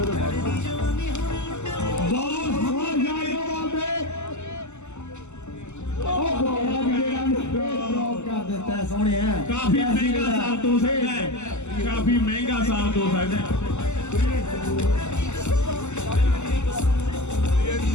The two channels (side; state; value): right; late; 0.83 ms